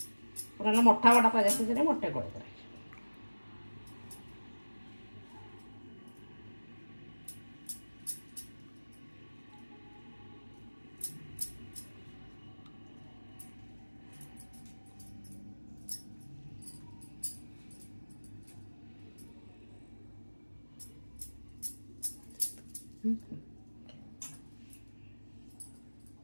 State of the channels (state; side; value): inverted; both; correlation -1.00